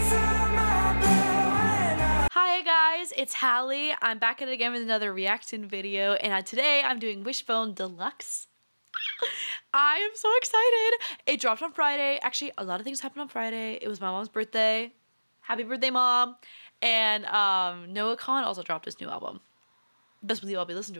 Hi guys, it's Hallie. I'm back at it again with another reaction video, and today I'm doing Wishbone Deluxe. I am so excited. It dropped on Friday. Actually, a lot of things happened on Friday. It was my mom's birthday. Happy birthday, Mom. And Noah Khan also dropped his new album. Best believe I'll be listening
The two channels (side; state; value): both; inverted; correlation -1.00